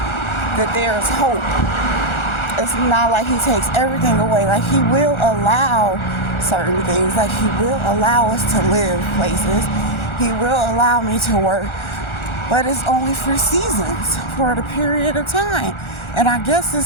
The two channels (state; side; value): late; right; 1.4 ms